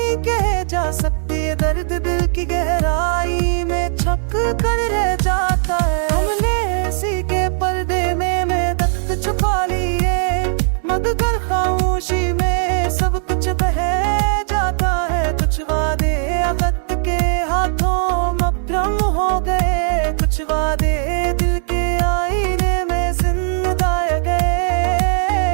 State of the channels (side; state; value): left; silent; digital silence